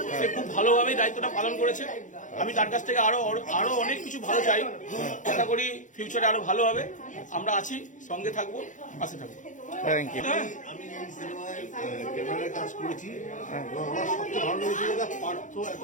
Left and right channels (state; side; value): late; right; 0.37 ms